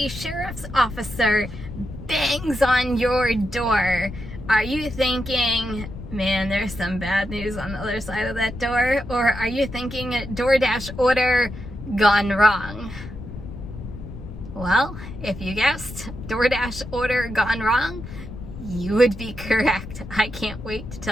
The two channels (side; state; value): left; noise; rumble, 11 dB below the sound